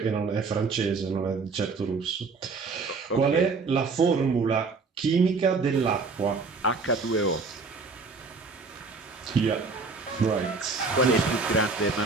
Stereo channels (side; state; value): left; quieter; 4.4 dB